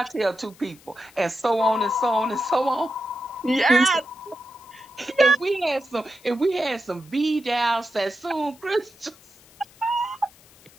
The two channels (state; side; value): noise; left; hiss, 26 dB below the sound